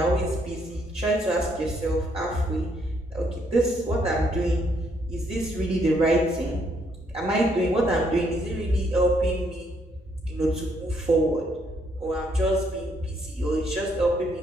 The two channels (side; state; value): both; normal; correlation 0.71